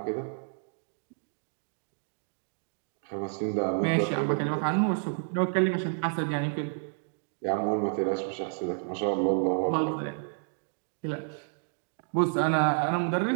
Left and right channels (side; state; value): left; silent; digital silence